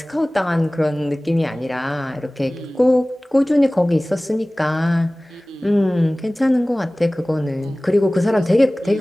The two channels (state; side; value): normal; both; correlation 0.98